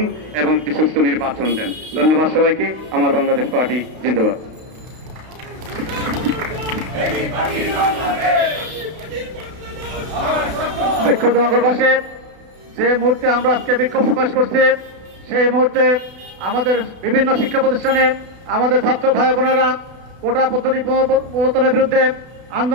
এবং একটি সুষ্ঠু নির্বাচন দেন। ধন্যবাদ সবাইকে। আমার বাংলাদেশ পার্টি জিন্দাবাদ। বিক্ষুব্ধ নগরবাসী, যে মুহূর্তে আমরা আজকে বিক্ষোভ প্রকাশ করছি, সেই মুহূর্তে আমাদের বিভিন্ন শিক্ষা প্রতিষ্ঠানে আমাদের ছাত্র ভাই বোনেরা কোটা পদ্ধতি প্রবর্তনের বিরুদ্ধে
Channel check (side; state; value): left; late; 32 ms